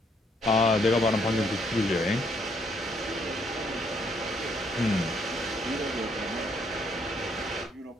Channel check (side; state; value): both; normal; correlation 0.70